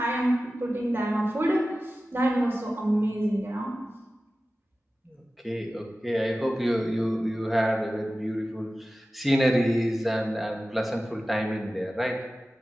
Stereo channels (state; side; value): normal; both; correlation 0.95